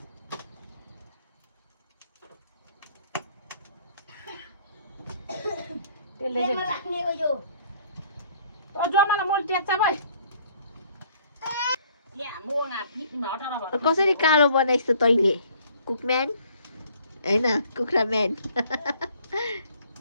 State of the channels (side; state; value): both; inverted; correlation -0.59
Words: कसरी कालो बनाइस् त तैले कुकम्यान हैन कुखुरा म्यान